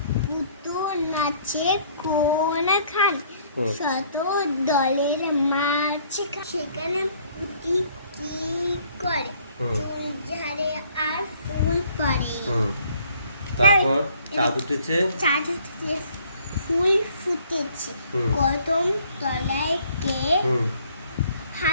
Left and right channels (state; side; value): inverted; both; correlation -0.60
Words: পুতু নাচে কোন খান, হুম। শত দলের মাছ সেখানে পুতি কি করে, হুম। চুল ঝাড়ে আর ফুল পড়ে। হুম। তারপর চাঁদ উঠেছে। চাঁদ উঠেছে, ফুল ফুটেছে, হুম। কদম তলায় কে, হুম।